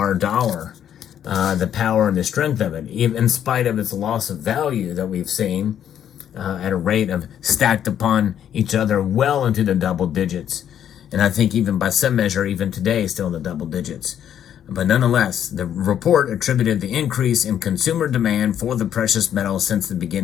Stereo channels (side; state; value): right; quieter; 9.8 dB